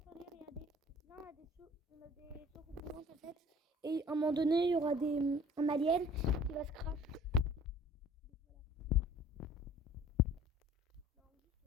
regardez. Là on a des soucoupes en fait. Et à un moment donné, il y aura un alien qui va se crash.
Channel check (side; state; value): both; normal; correlation 0.50